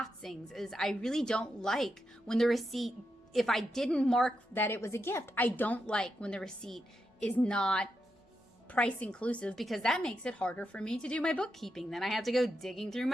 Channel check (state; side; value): normal; both; correlation 0.85